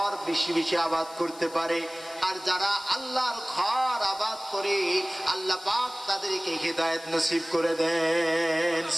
বেশি বেশি আবাদ করতে পারে। আর যারা আল্লাহর ঘর আবাদ করে আল্লাহ পাক তাদেরকে হিদায়াত নসিব করে দেন।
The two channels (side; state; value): left; noise; hiss, 19 dB below the sound